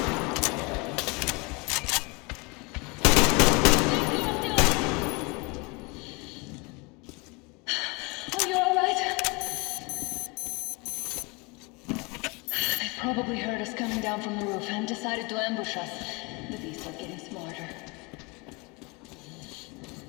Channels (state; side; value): quieter; right; 27.7 dB